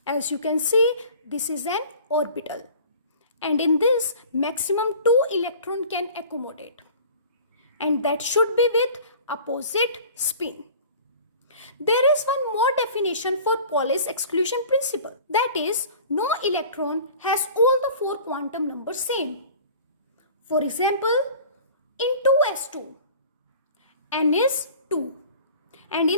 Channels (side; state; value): both; inverted; correlation -0.44